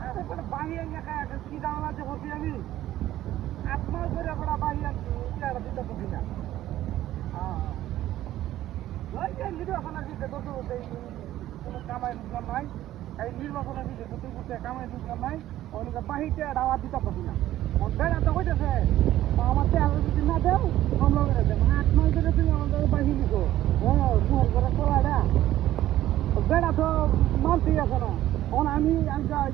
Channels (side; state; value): left; quieter; 13.8 dB